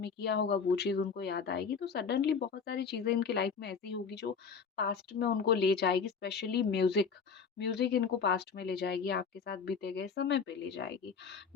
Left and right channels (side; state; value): right; quieter; 5.9 dB